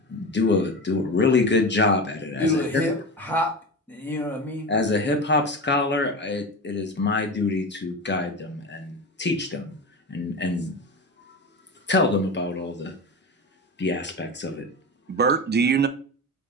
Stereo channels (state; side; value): normal; both; correlation 0.25